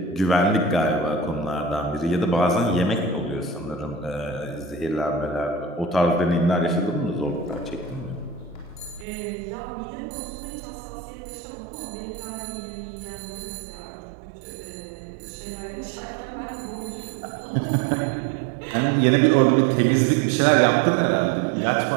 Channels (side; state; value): left; drops out; at 9.1 s